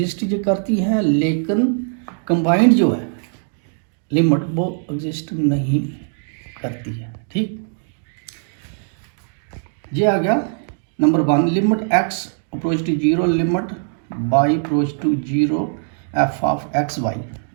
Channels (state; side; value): silent; left; digital silence